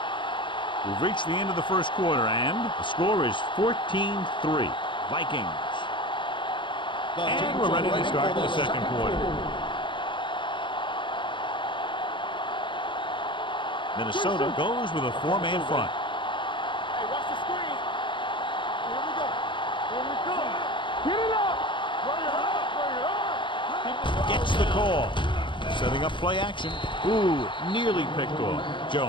We've reached the end of the first quarter, and the score is 14-3. Vikings. And we're ready to start the second quarter. Minnesota goes with a four-man front. Hey, watch the screen. Here we go. Here we go. Get it up. Bring it up. Bring it up. Gets the call. Setting up play action. Ooh, nearly picked off.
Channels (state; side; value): late; right; 0.23 ms